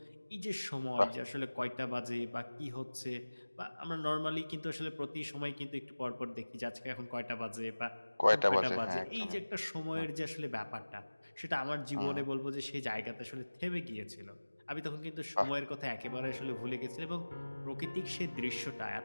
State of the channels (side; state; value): both; inverted; correlation -1.00